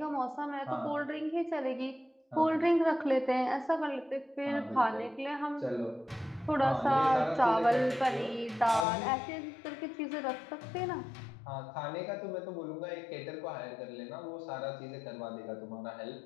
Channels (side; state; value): right; drops out; at 8.8 s